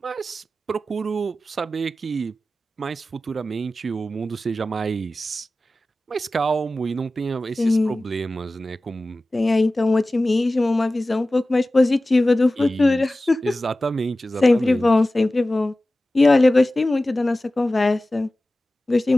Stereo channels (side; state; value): both; normal; correlation 0.96